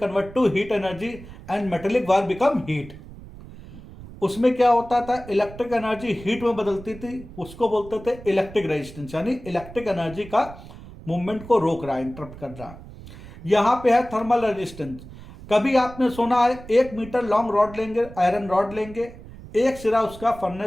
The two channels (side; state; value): right; noise; rumble, 16 dB below the sound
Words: to heat energy and metallic wire become heat. उसमें क्या होता था, electric energy heat में बदलती थी, उसको बोलते थे इलेक्ट्रिक रेजिस्टेंस, यानी इलेक्ट्रिक एनर्जी का मूवमेंट को रोक रहा है, इंटरप्ट कर रहा है. यहां पे है थर्मल रेजिस्टेंस. कभी आपने सुना है 1 मीटर लॉन्ग रॉड लेंगे, आयरन रॉड लेंगे, एक सिरा उसका